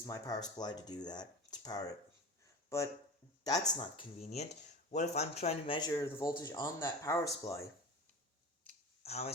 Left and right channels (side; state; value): both; normal; correlation 0.32